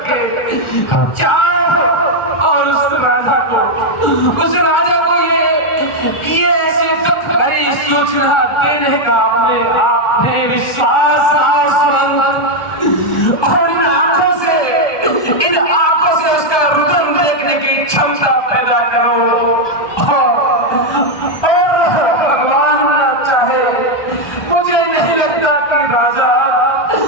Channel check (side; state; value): right; late; 1.2 ms